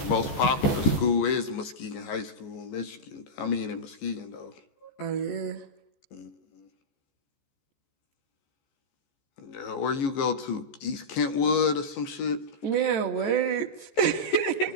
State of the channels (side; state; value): right; late; 15 ms